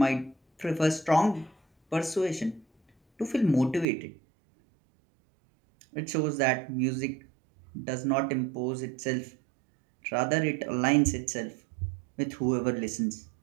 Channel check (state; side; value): drops out; left; at 3.9 s